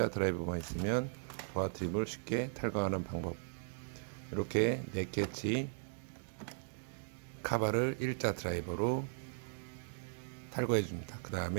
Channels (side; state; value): left; silent; digital silence